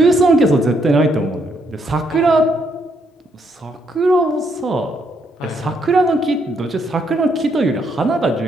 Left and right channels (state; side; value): normal; both; correlation 0.73